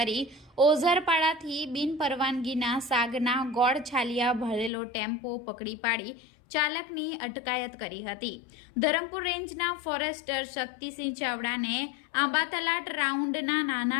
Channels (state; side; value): drops out; right; at 4.7 s